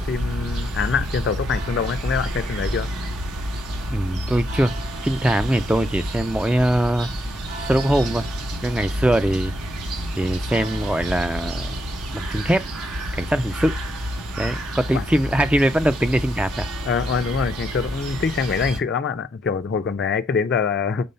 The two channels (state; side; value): normal; both; correlation 0.77